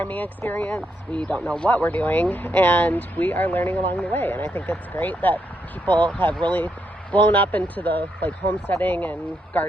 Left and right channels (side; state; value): both; normal; correlation 0.79